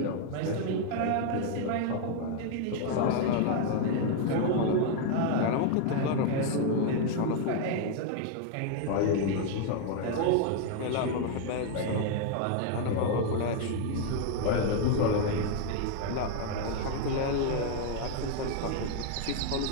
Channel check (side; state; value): both; different; correlation 0.00